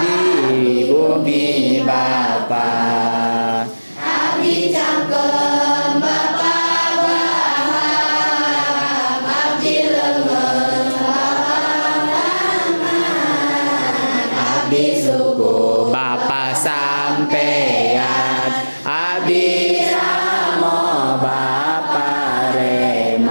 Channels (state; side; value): inverted; both; correlation -1.00